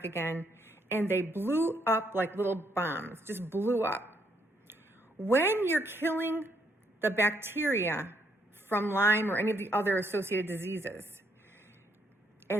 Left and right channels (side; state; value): both; normal; correlation 0.72